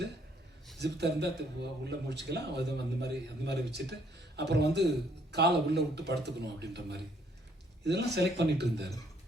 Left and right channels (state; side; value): normal; both; correlation 0.66